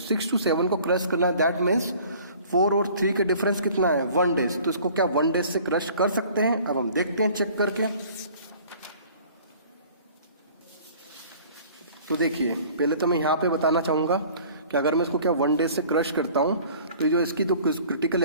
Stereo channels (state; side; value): inverted; both; correlation -0.50